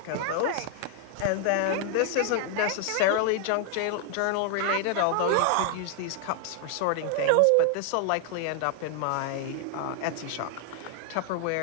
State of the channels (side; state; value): both; different; correlation 0.00